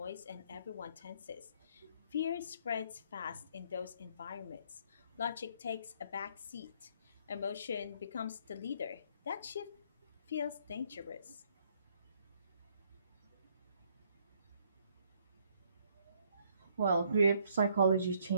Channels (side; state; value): both; inverted; correlation -0.67